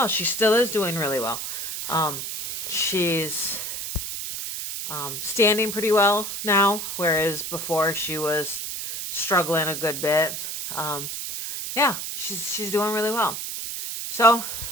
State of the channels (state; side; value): noise; right; hiss, 5 dB below the sound